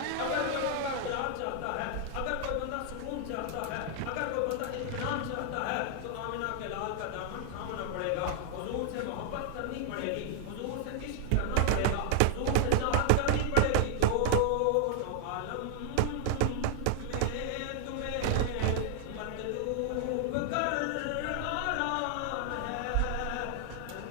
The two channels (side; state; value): both; different; correlation -0.01